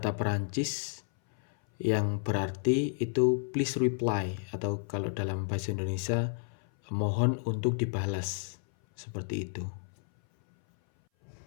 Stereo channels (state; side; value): silent; right; 57 dB below the other